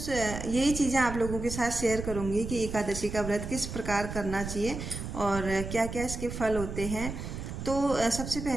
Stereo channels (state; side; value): noise; right; rumble, 7 dB below the sound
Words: यही चीज़ें आप लोगों के साथ शेयर करूंगी कि एकादशी का व्रत किस प्रकार करना चाहिए और क्या क्या इसके फल होते हैं। तो सबसे